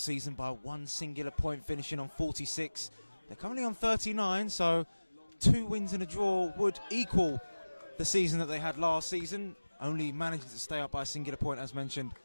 season by 1 singular point, finishing on 46. They're currently on 39, so 2 wins and a draw would equal the season that they had last season, only managing to stay up by a singular point, as mentioned,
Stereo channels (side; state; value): both; inverted; correlation -1.00